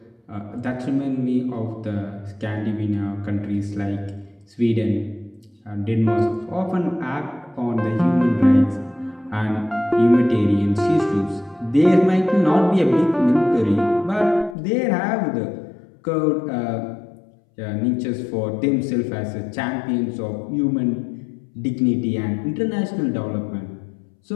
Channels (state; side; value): drops out; right; at 14.6 s